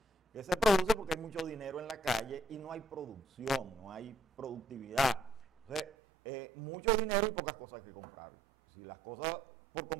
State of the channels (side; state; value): left; drops out; at 5.9 s